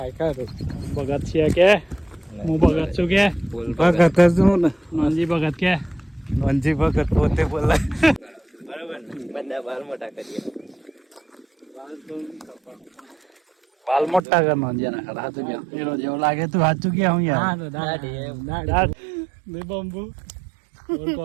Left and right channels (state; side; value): drops out; left; at 14.2 s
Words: ખરું. ભગત છે કે હું ભગત છું કે? ભગત છું ને, નોનજી ભગત કે? નોનજી ભગત પોતે બોલાય. બરાબર ને, બધા બાલ મોટા કરીએ. બાલ મોટા કર નોંધ્યા ના ખરા. હાચું કે એનો જેવો લાગે તું સાચું કે હું યાર બંબુ